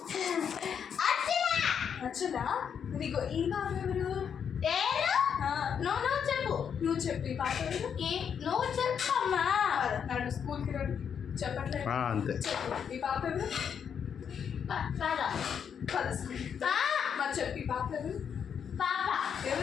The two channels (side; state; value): right; quieter; 7.6 dB